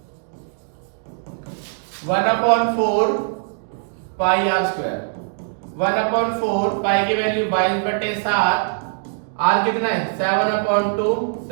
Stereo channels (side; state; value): left; silent; digital silence